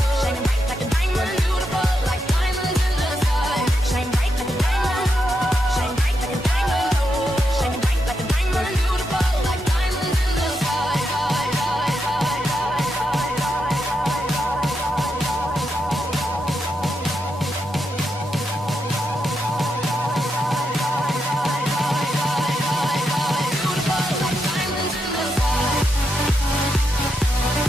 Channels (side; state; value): both; normal; correlation 0.83